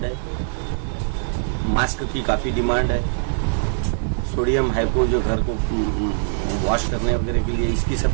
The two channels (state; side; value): silent; left; digital silence